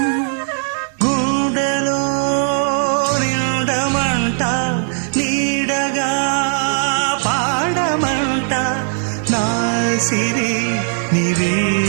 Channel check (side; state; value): left; silent; digital silence